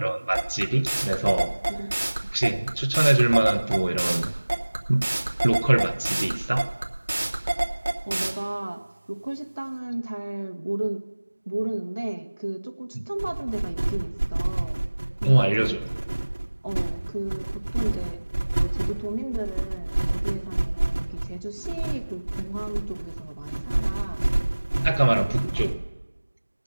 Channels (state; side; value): inverted; both; correlation -1.00